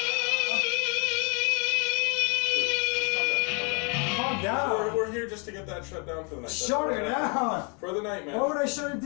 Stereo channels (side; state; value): right; quieter; 35.3 dB